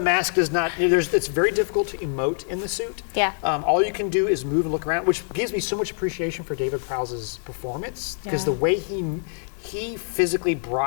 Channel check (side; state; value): right; silent; digital silence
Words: does not. It's very difficult to emote in the suit. Yeah. All you can do is move and look around, which gives me so much appreciation for David Prowse's performance because Yeah. the way he physically